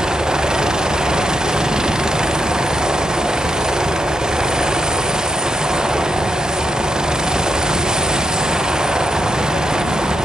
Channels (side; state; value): both; normal; correlation 0.82